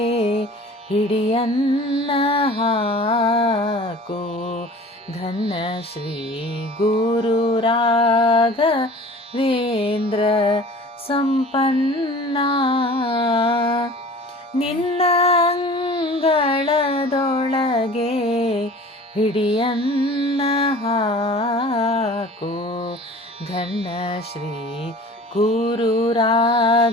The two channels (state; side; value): normal; both; correlation 0.43